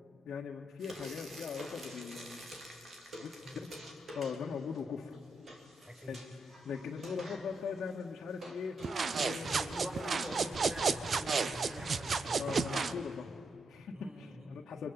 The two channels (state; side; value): normal; both; correlation 0.81